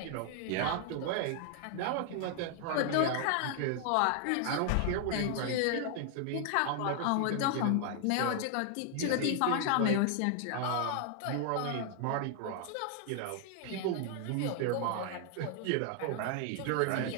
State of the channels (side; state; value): both; different; correlation 0.00